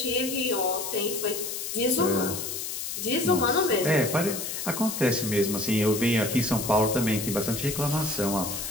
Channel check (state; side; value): noise; left; hiss, 5 dB below the sound